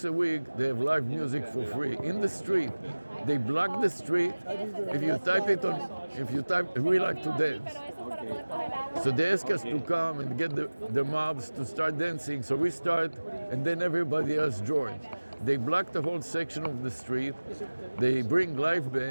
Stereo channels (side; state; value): both; inverted; correlation -1.00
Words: a week, they have live music for free in the street. They block the street. If you type it on, we like to dance. So they ask us to come and get the mobs to start dancing. So we start, and then everybody else joins. They block the whole section of the street. They bring live